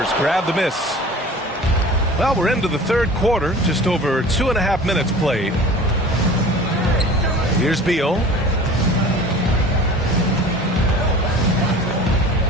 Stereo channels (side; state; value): both; normal; correlation 0.41